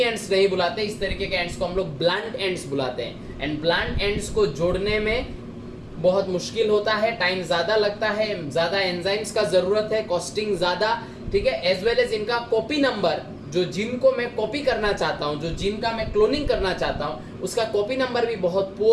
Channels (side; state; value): both; identical; correlation 1.00